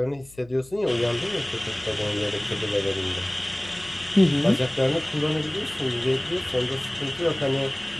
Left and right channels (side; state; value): left; noise; hum, 24 dB below the sound